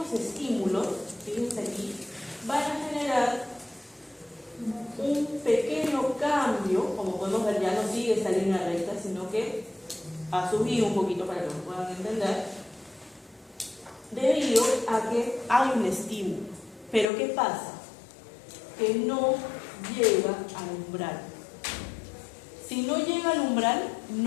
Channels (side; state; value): right; drops out; at 17.1 s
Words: estímulos, fíjense aquí, van a generar un pequeño cambio, como podemos ver, ya no sigue esta línea recta, sino que ha subido un poquito para que lo puedan entender, debido a que hay un estímulo. Pero ¿qué pasa? Que no llega al umbral. Si no llega al umbral,